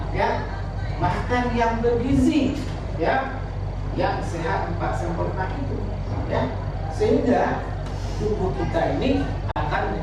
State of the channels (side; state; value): both; identical; correlation 1.00